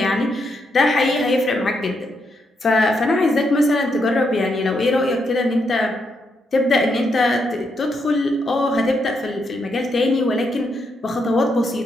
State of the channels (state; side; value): normal; both; correlation 0.80